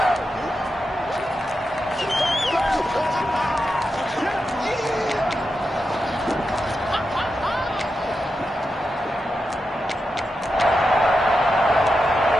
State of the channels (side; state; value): both; normal; correlation 0.88